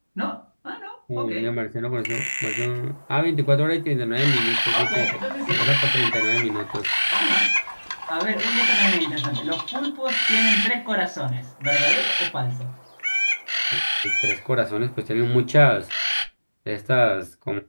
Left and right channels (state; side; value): inverted; both; correlation -1.00